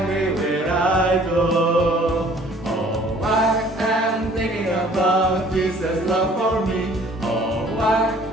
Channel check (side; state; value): both; normal; correlation 0.55